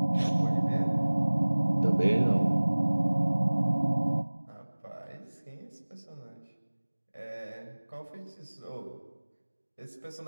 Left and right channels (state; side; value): inverted; both; correlation -1.00